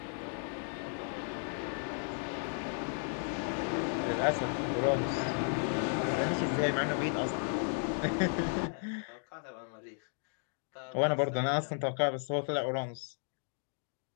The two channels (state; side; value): silent; right; 55 dB below the other